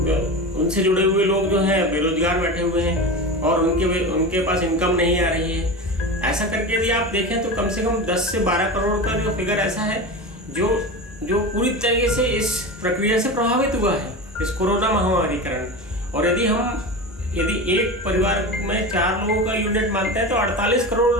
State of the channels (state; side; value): normal; both; correlation 0.26